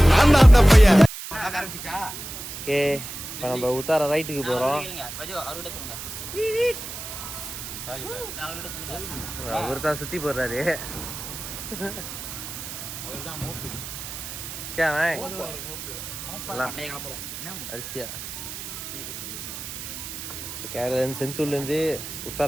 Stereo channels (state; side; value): noise; right; hiss, 9 dB below the sound